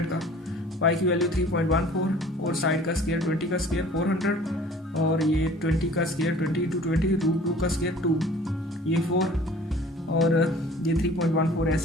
का। पाई की वैल्यू 3.14 और साइड का स्क्वायर 20 का स्क्वायर 400 और ये 20 का स्क्वायर 20 × 20 √2 का स्क्वायर 2, ये 4 और ये 3.14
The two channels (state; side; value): normal; both; correlation 0.48